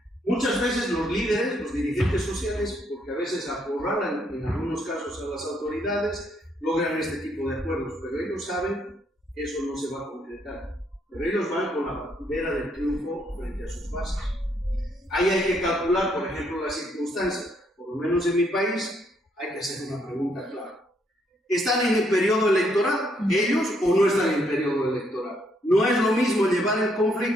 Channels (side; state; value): both; normal; correlation 0.72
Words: Muchas veces los líderes, los dirigentes sociales, porque a veces acorralan en algunos casos a las autoridades, logran este tipo de acuerdos, pero ellos saben que eso no se va a concretar. Pero ellos van con la bandera del triunfo frente a sus bases. Ahí hay que calcular, por ejemplo, las circunstancias. Por lo menos en mi país hay que hacer una pregunta clara. ¿Están en el periodo electoral ellos o no están en el periodo electoral? No es lo mismo llevar el